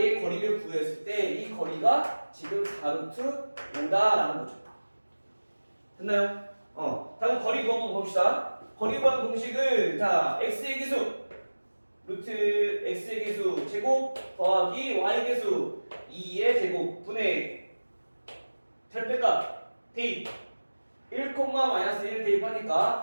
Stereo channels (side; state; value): both; inverted; correlation -1.00